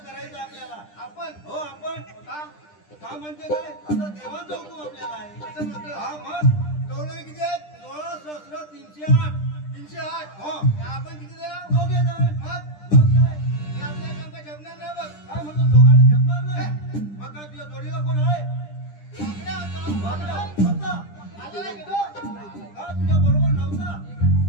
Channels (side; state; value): right; late; 10 ms